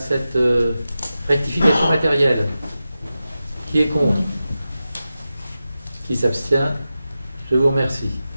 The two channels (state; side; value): inverted; both; correlation -0.92